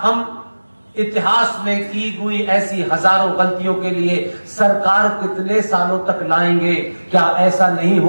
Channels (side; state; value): both; inverted; correlation -1.00